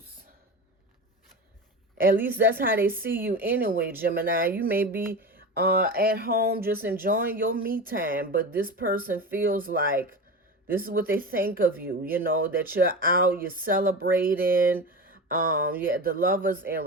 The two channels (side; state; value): both; normal; correlation 0.26